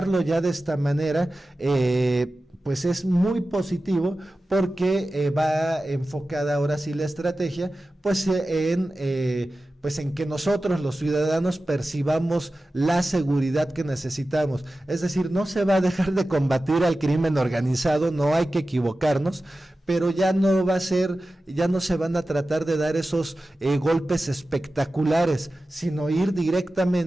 ya de esta manera pues es muy positivo, porque va enfocada ahora sí la estrategia pues en que nosotros los ciudadanos percibamos la seguridad que necesitamos. Es decir, no se va a dejar de combatir al crimen organizado, no hay que equivocarnos, pero ya no va a ser, ya no se van a tratar de dar esos golpes espectaculares, sino ir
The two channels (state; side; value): normal; both; correlation 0.95